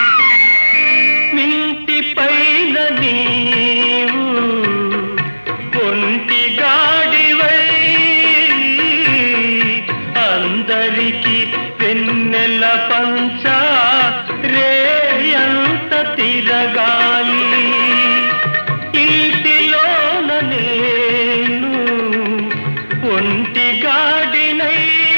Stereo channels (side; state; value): both; inverted; correlation -1.00